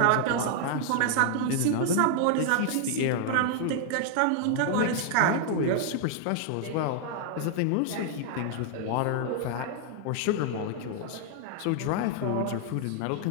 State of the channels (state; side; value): different; both; correlation 0.00